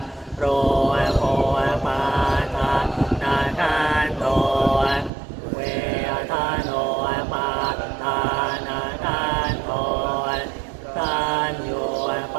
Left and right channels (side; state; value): left; drops out; at 5.1 s